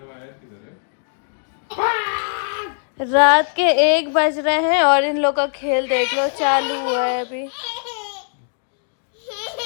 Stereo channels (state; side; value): silent; right; digital silence